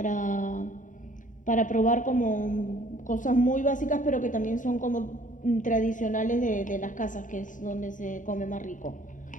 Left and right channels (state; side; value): late; right; 0.37 ms